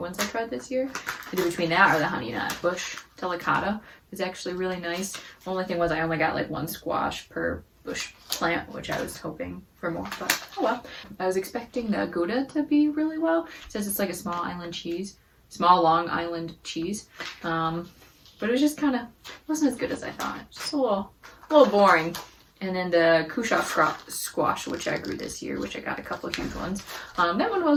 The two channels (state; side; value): identical; both; correlation 1.00